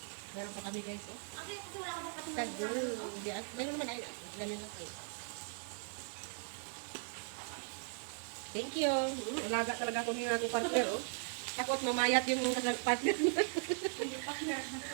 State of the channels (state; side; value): silent; left; 52 dB below the other